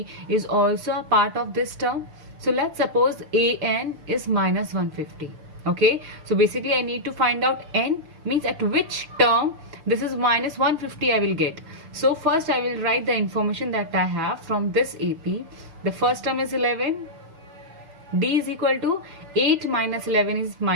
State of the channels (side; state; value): left; late; 6.9 ms